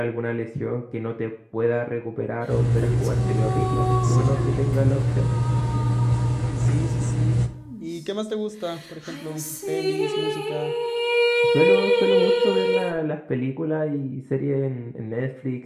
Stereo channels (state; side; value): identical; both; correlation 1.00